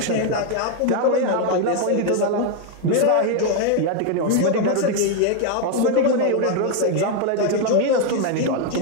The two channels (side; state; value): both; different; correlation 0.00